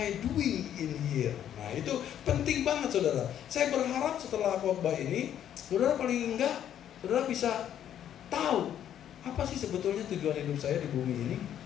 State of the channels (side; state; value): right; quieter; 10.3 dB